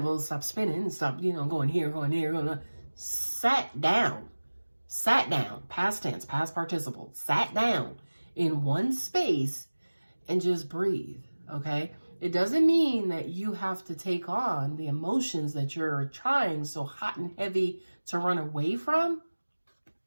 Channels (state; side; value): inverted; both; correlation -1.00